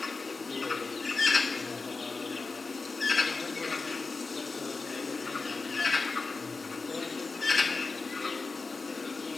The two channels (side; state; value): right; quieter; 4.1 dB